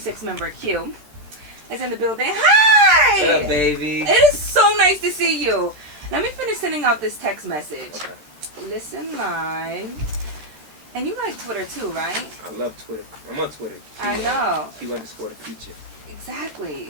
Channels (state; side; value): late; left; 13 ms